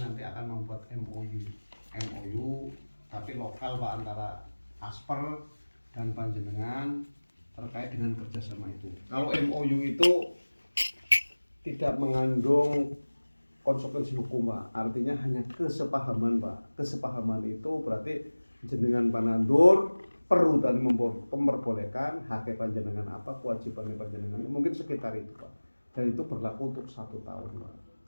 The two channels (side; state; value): both; inverted; correlation -1.00